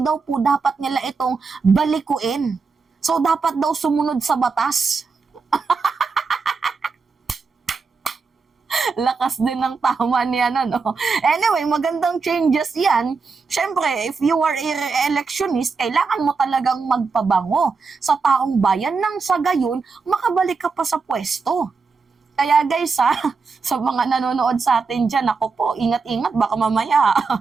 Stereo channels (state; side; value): quieter; left; 4.8 dB